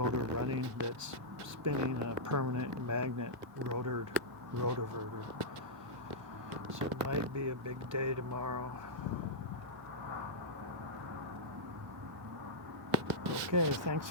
running that's spinning a permanent magnet rotoverter. So it might be a big day tomorrow. Okay, thanks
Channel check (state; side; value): normal; both; correlation -0.12